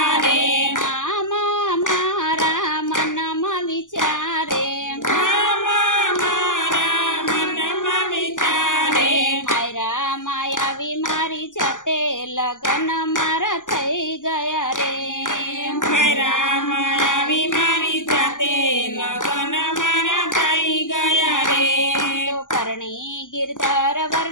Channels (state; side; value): late; right; 0.87 ms